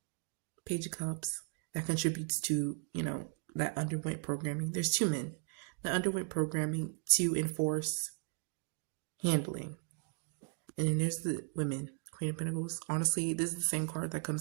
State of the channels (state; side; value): quieter; left; 38.0 dB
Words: Page of Cups, that contributes to, that underwent programming. There's 2 men that underwent programming to enforce handling. And then there's the women, Queen of Pentacles. Honestly, this is the same card that